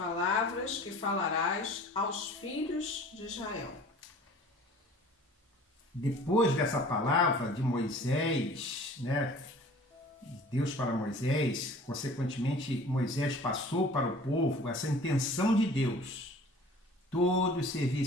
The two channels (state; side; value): normal; both; correlation 0.47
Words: que falarás aos filhos de Israel. Depois dessa palavra de Moisés, Deus para Moisés, consequentemente Moisés passou para o povo essa intenção de Deus. Todos